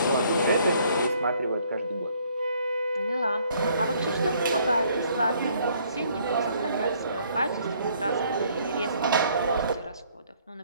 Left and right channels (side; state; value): both; inverted; correlation -0.63